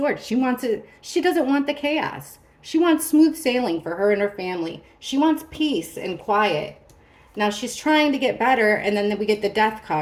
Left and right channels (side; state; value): both; identical; correlation 1.00